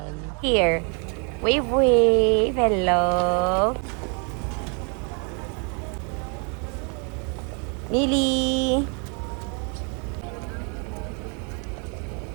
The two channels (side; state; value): left; quieter; 36.6 dB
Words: Here. Wave! Hello! Mili!